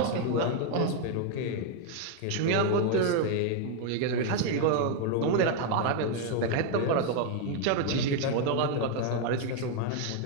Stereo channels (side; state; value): both; different; correlation 0.01